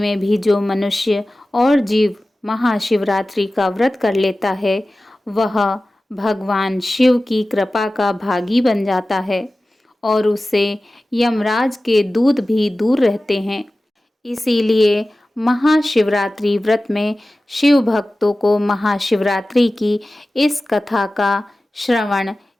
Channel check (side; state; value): both; normal; correlation 0.96